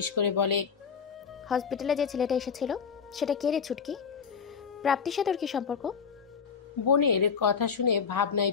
করে বলে, হসপিটালে যে ছেলেটা এসেছিল সেটা কে রে ছুটকি? প্রাপ্তির সাথে ওর কি সম্পর্ক? বোনের কথা শুনে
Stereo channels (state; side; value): quieter; right; 6.3 dB